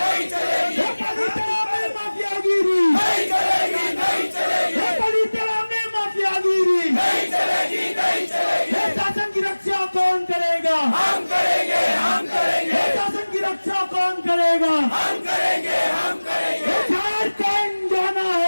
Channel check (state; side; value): inverted; both; correlation -1.00